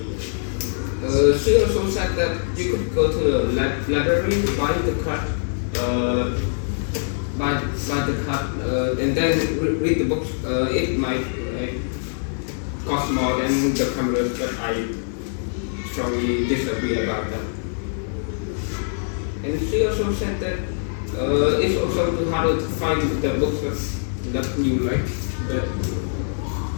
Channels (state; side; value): silent; right; digital silence